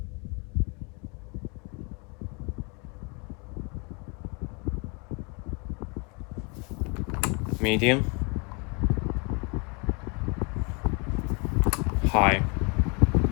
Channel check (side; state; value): right; quieter; 32.7 dB